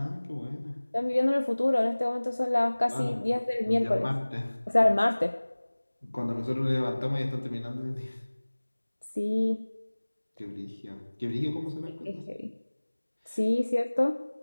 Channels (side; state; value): both; inverted; correlation -1.00